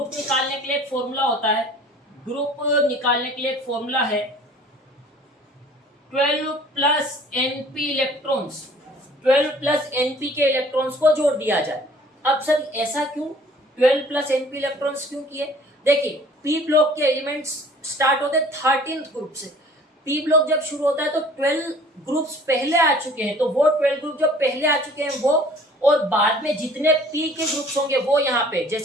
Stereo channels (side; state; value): both; normal; correlation 0.51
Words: निकालने के लिए एक फॉर्मूला होता है। ग्रुप निकालने के लिए एक फॉर्मूला है 12 plus NP electrons. 12 plus NP के इलेक्ट्रॉन्स को जोड़ दिया जाए। अब सर ऐसा क्यों 12 प्लस NP इलेक्ट्रॉन्स क्यों किए? देखिए पी ब्लॉक के एलिमेंट्स स्टार्ट होते 13th ग्रुप से। पी ब्लॉक जब शुरू होता है तो 12 ग्रुप्स पहले आ चुके हैं, तो वो 12 ग्रुप जो पहले आ चुके हैं वो, और बाद में जितने पी के ग्रुप्स होंगे वो यहाँ पे,